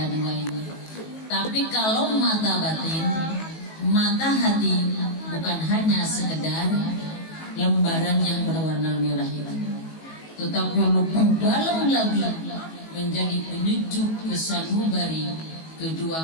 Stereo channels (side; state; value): right; late; 19 ms